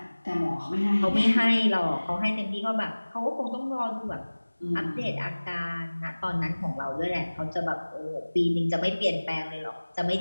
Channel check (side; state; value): both; inverted; correlation -1.00